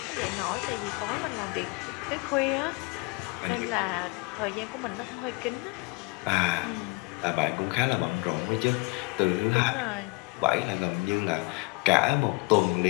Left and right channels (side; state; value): right; quieter; 28.4 dB